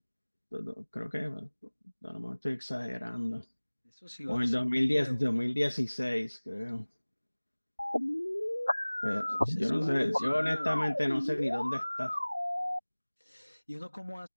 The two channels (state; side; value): inverted; both; correlation -1.00